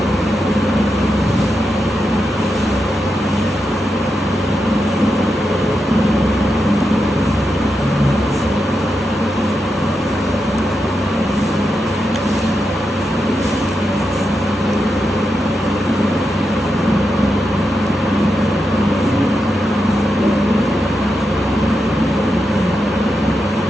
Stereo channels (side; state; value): both; normal; correlation 0.87